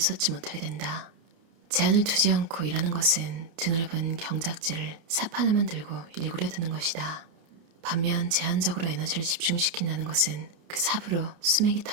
쏟지 못하게 된다. 제한을 두지 않고 일하는 것은 드넓은 경작지를 삽 하나만 들고 일구려 드는 것이다. 반면 제한적으로 에너지를 집중시킨다는 것은 그 삽으로 수맥이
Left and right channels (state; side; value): late; left; 30 ms